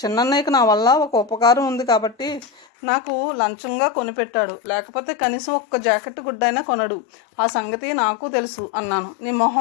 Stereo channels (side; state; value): right; drops out; at 2.7 s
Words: చిన్నన్నయ్యకి నా వల్ల ఒక ఉపకారం ఉంది కాబట్టి నాకు లంచంగా కొనిపెట్టాడు. లేకపోతే కనీసం ఒక్క జాకెట్ గుడ్డైనా కొనడు. ఆ సంగతి నాకు తెలుసు అన్నాను. నీ